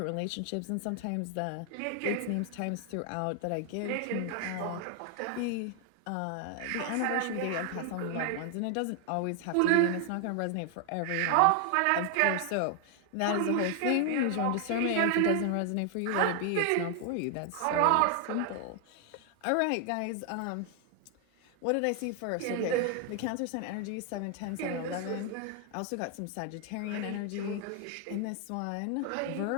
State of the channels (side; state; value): both; different; correlation 0.00